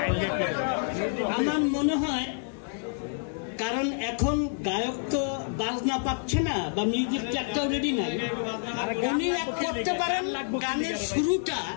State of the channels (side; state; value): right; silent; 59 dB below the other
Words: আমার মনে হয় কারণ এখন গায়ক তো বাজনা পাচ্ছে না বা মিউজিক ট্র্যাকটাও রেডি নাই উনি এক করতে পারেন গানের শুরুটা